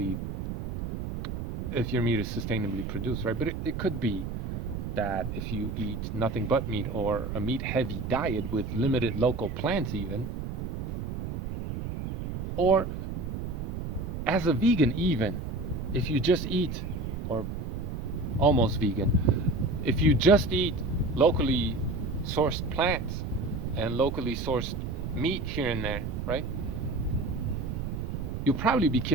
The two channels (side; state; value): right; noise; rumble, 5 dB below the sound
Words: if your meat is sustainably produced, right? But it could be that if you eat nothing but meat or a meat heavy diet with limited local plants, even, or as a vegan, even if you just eat, or almost vegan, if you just eat locally sourced plants and locally sourced meat here and there, right? You'll probably be